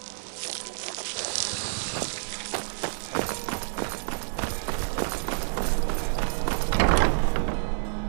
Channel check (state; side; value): silent; left; 59 dB below the other